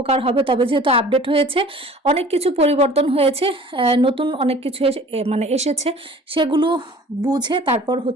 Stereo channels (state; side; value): normal; both; correlation 0.47